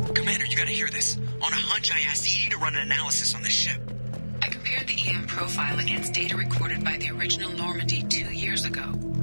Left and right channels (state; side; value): inverted; both; correlation -1.00